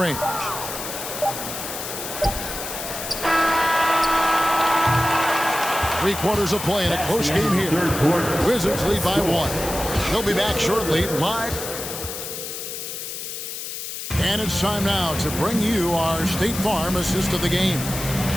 3 quarters of play in a close game here. Wizards lead by 1. They'll be back shortly live. And it's time now to bring you our State Farm assist of the game.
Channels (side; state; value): left; noise; hiss, 7 dB below the sound